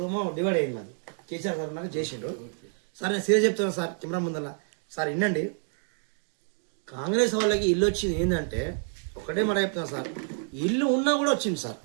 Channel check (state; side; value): silent; left; 59 dB below the other